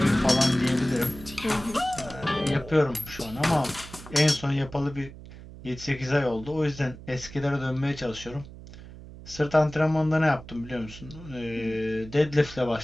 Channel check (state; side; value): noise; right; hum, 16 dB below the sound